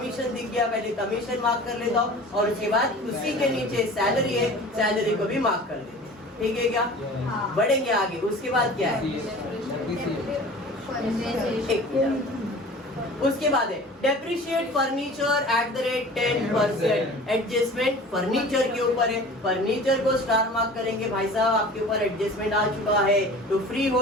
दिख गया, पहले कमीशन मार्क कर लेता हूँ और उसके बाद उसी के नीचे सैलरी है, सैलरी को भी मार्क कर लेते हैं। ठीक है क्या? बढ़ेंगे आगे। उसके बाद क्या है? उसके बाद है depreciate furniture at the rate 10%। Adjustment furniture के ऊपर है, फर्नीचर को स्टार मार्क करेंगे भाई साहब, आपके ऊपर एडजस्टमेंट आ चुका है तो फ्री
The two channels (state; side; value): normal; both; correlation 0.41